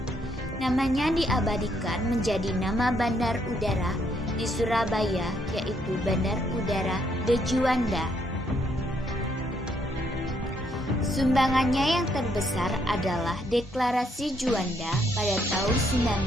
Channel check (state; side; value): normal; both; correlation 0.72